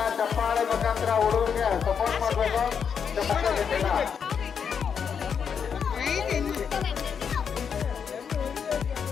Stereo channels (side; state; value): right; quieter; 7.0 dB